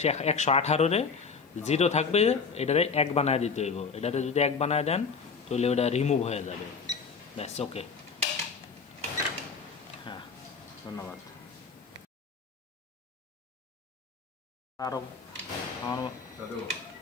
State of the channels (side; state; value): right; quieter; 5.2 dB